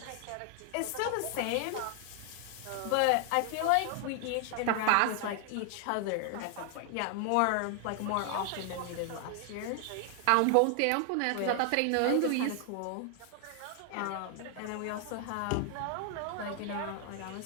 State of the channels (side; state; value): both; different; correlation 0.00